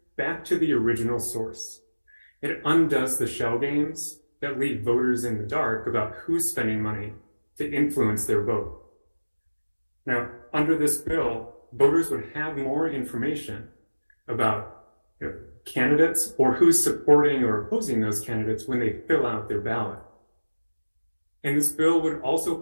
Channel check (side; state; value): both; inverted; correlation -1.00